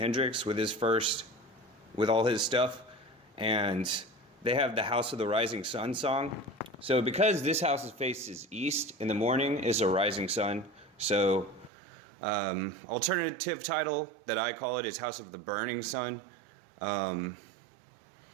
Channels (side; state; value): left; drops out; at 11.7 s